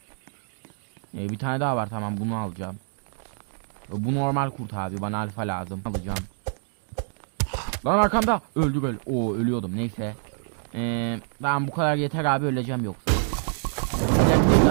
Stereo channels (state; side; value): silent; left; digital silence